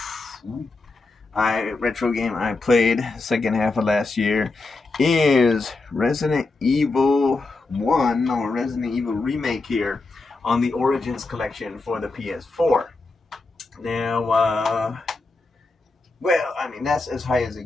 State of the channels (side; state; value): right; quieter; 3.5 dB